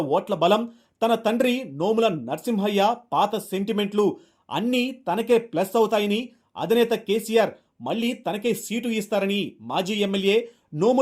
ఓట్ల బలం, తన తండ్రి నోముల నరసింహయ్య పాత సెంటిమెంట్లు అన్నీ తనకే ప్లస్ అవుతాయని అధినేత కేసీఆర్ మళ్లీ తనకే సీటు ఇస్తారని మాజీ ఎమ్మెల్యే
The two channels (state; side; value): identical; both; correlation 1.00